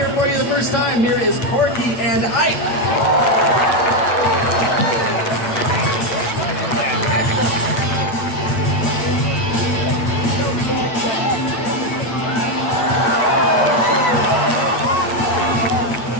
for you the first time, here is Corky and Ike.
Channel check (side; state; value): right; late; 9.0 ms